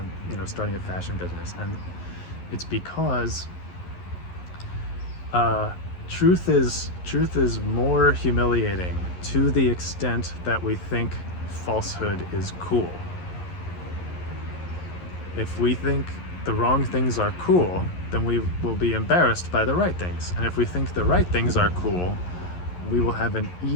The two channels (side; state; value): right; late; 11 ms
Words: starting a fashion business, and it's because truth is more humiliating to the extent that we think falsehood is cool. If we think the wrong things are cool, then we will be embarrassed by the right things. And if we think the right things are cool, we will have an